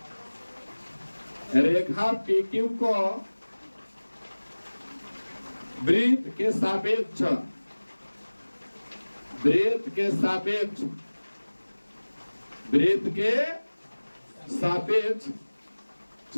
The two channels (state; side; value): inverted; both; correlation -1.00